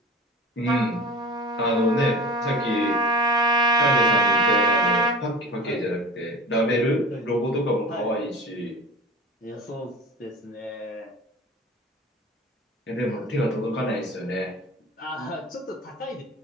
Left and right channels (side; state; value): both; normal; correlation 0.37